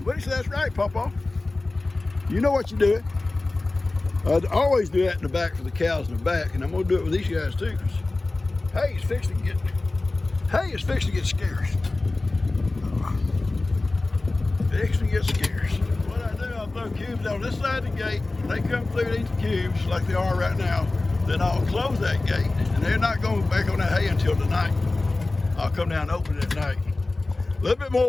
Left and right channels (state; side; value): quieter; right; 3.1 dB